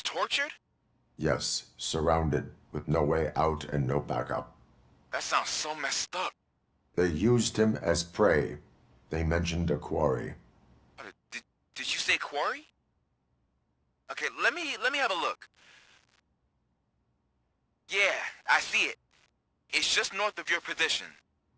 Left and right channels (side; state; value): both; identical; correlation 1.00